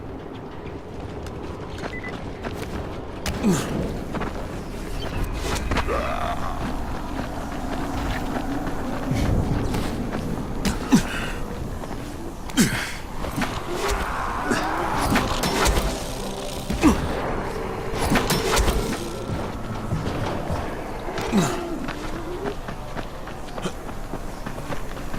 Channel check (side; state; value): both; identical; correlation 1.00